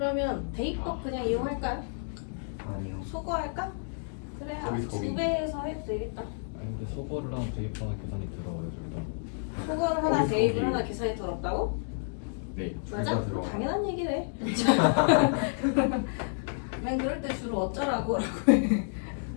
대입법 그냥 이용할까요? 아니요. 소거할까? 그래 거기. 2배에서 해도 되겠다. 아니 근데 소거를 하면 대입하나 계산이 들어가요 둘 다. 소거를 하나 대입을 하나 계산이 더럽다고? 네. 맞아? 둘다 들어가. 당연한 얘기래. 난 그럴 때 주로 어쩌라고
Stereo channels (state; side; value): silent; right; digital silence